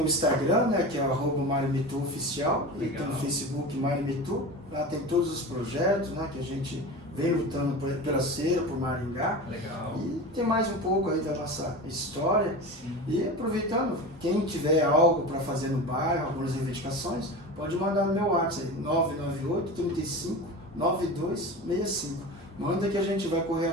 o Instagram, né, que é @MarioMitu_oficial, e tem o Facebook Mário Mitu. Lá tem todos os projetos, né, que a gente vem lutando pela cera, por Maringá. Legal. E tem mais um pouco aí da nossa história. Sim. E aproveitando, quem tiver algo para fazer no bairro, algumas reivindicações, pode mandar no meu WhatsApp, 998 35 9265. Manda que a gente vai correr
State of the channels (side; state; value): both; normal; correlation 0.30